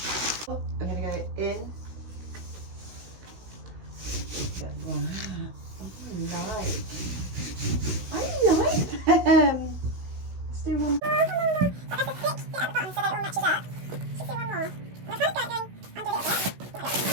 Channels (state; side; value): late; left; 16 ms